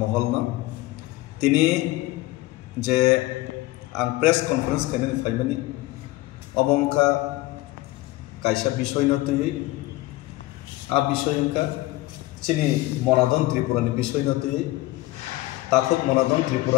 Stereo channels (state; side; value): quieter; right; 18.8 dB